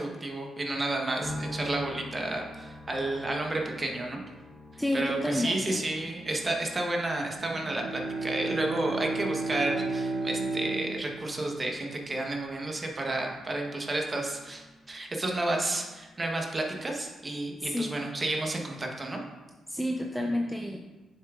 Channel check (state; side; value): normal; both; correlation 0.89